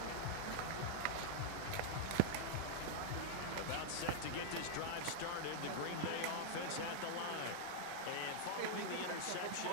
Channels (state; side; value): different; both; correlation -0.01